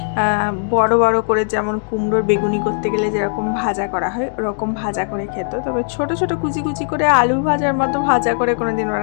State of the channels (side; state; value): right; silent; digital silence